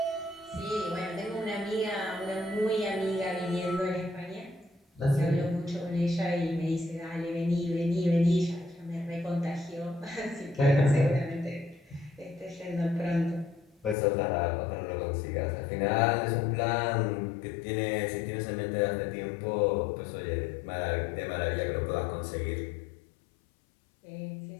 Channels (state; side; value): drops out; right; at 14.0 s